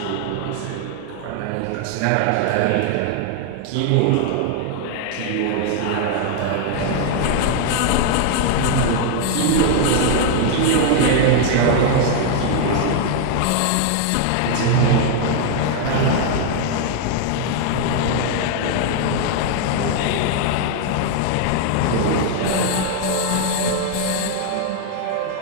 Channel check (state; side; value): different; both; correlation 0.00